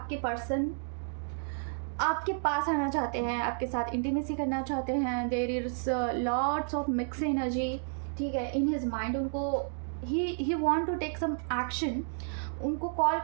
पर्सन आपके पास आना चाहते हैं, आपके साथ इंटीमेसी करना चाहते हैं। There is lots of mix energy. ठीक है, इन हिज माइंड उनको ही want to take some action. उनको कॉल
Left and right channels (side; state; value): left; silent; digital silence